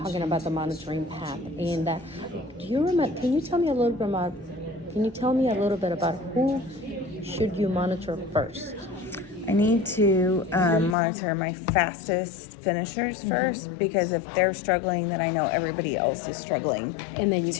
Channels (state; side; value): drops out; right; at 11.0 s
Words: about the monitoring path. And do you remember? Can you tell me a little bit about? Can you tell me a little bit about who should you monitor first? I need to monitor my fastest finishers first, because if they're struggling, then I know everybody else is struggling And then you